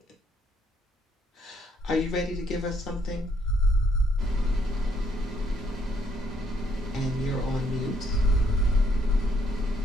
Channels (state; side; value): normal; both; correlation 0.70